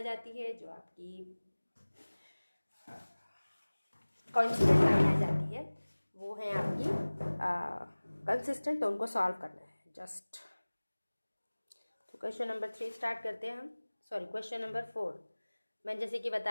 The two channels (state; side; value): inverted; both; correlation -1.00